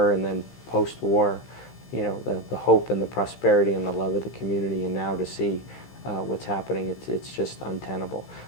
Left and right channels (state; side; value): late; right; 15 ms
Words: and then post-war, the hope and the prosperity and the love of the community, and now to see what's happening, it's just untenable.